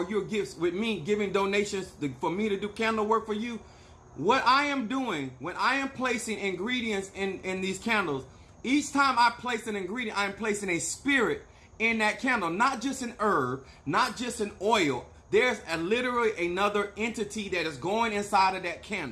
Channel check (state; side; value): identical; both; correlation 1.00